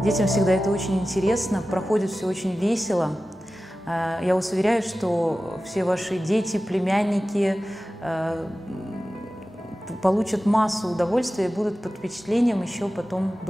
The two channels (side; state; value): both; normal; correlation 0.95